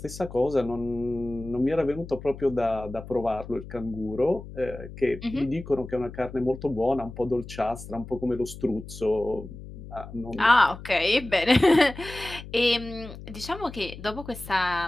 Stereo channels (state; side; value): noise; left; hum, 13 dB below the sound